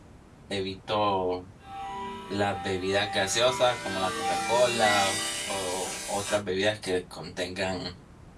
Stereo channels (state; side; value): identical; both; correlation 1.00